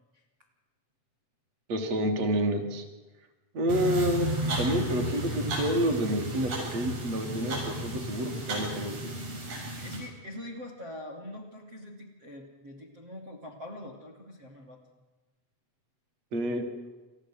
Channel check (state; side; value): late; left; 8.1 ms